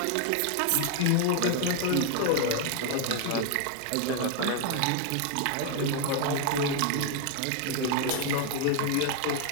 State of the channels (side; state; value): both; different; correlation 0.00